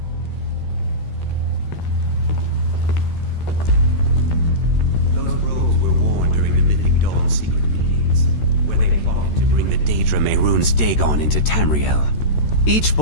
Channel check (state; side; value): late; right; 13 ms